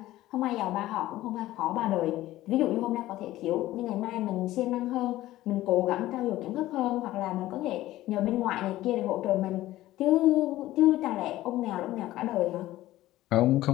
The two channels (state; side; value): quieter; right; 15.7 dB